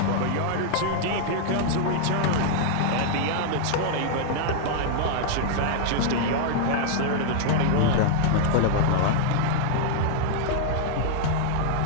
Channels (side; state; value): both; different; correlation -0.01